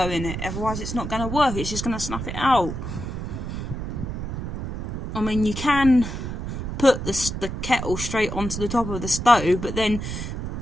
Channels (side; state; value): right; noise; rumble, 5 dB below the sound